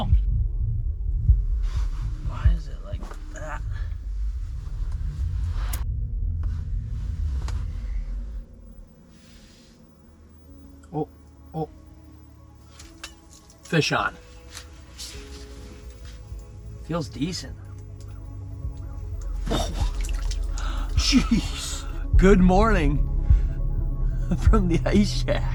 Why is it like that? Oh, oh. Fish on. Feels decent. Oh, jeez. Good morning from the ice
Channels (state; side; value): identical; both; correlation 1.00